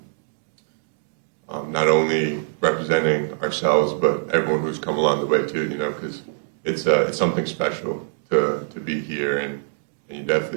not only representing ourselves, but everyone who's come along the way too, you know, because it's something special to be here, and you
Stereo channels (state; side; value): silent; left; digital silence